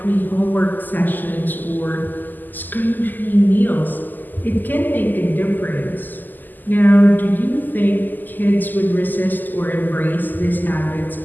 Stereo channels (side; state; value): right; late; 0.087 ms